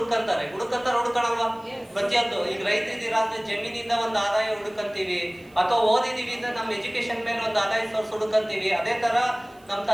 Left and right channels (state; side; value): noise; right; hiss, 30 dB below the sound